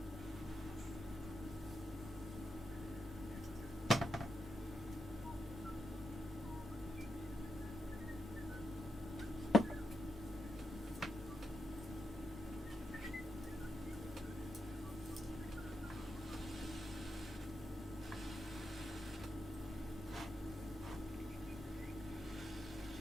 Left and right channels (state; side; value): normal; both; correlation 0.85